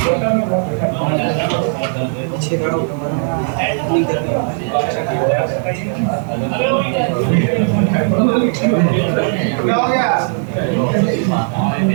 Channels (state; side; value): silent; left; digital silence